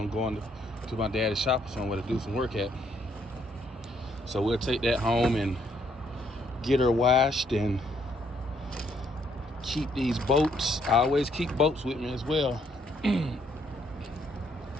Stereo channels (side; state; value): both; normal; correlation 0.70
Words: going to my daddy's shop or somewhere to do some work at. So we'll take that home and get her washed and keep these boats. I always keep boats with me as well.